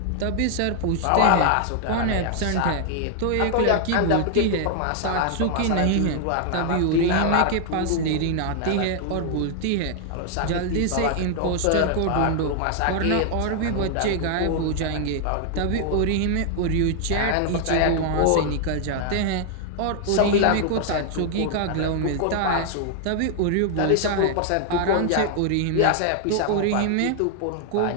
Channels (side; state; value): both; different; correlation 0.00